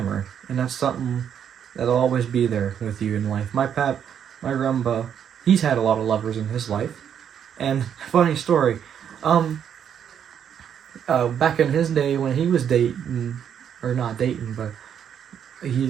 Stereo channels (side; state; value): left; quieter; 8.6 dB